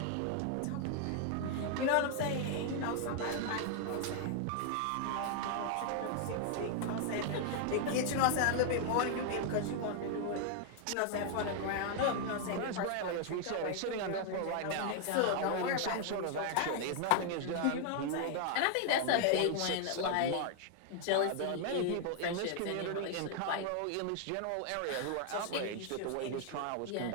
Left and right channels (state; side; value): different; both; correlation 0.00